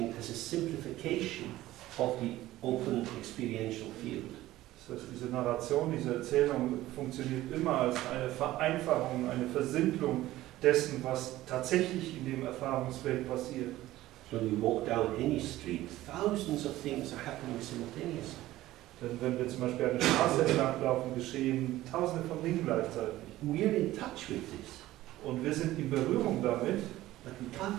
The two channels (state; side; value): quieter; left; 15.8 dB